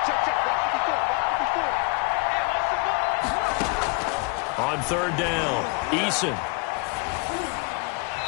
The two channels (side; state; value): right; quieter; 28.4 dB